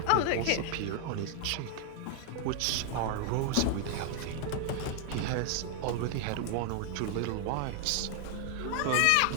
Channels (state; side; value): different; both; correlation 0.00